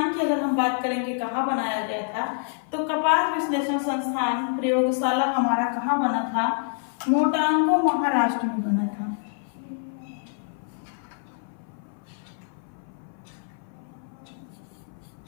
की अगर हम बात करेंगे कहाँ बनाया गया था, तो कपास विश्लेषण संस्थान प्रयोगशाला हमारा कहाँ बना था, मोटांगू महाराष्ट्र में बना था।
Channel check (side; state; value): right; silent; 57 dB below the other